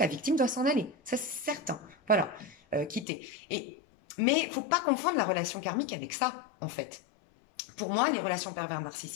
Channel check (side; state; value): right; drops out; at 3.1 s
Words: la victime doit s'en aller, ça c'est certain. Voilà, quitter. Mais faut pas confondre la relation karmique avec ça en fait. Pour moi, les relations pervers